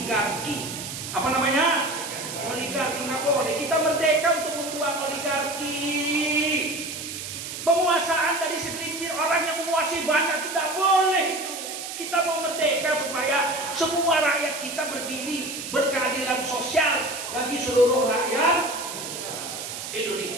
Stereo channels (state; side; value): noise; right; hiss, 8 dB below the sound